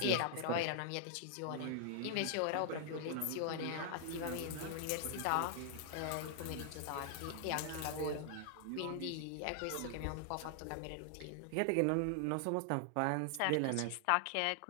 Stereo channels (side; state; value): both; different; correlation 0.00